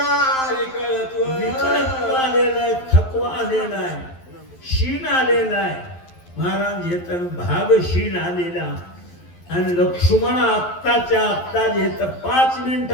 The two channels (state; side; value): late; right; 11 ms